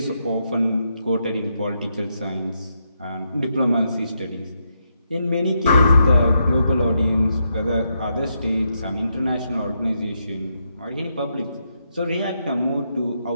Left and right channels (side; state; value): both; inverted; correlation -0.81